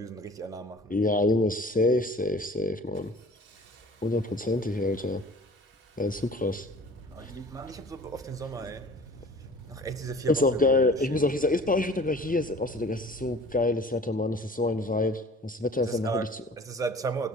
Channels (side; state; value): both; normal; correlation 0.47